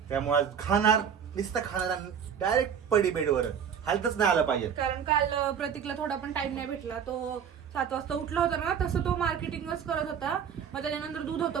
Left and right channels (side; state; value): left; quieter; 7.8 dB